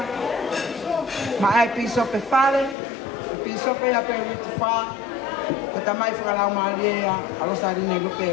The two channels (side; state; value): right; drops out; at 2.8 s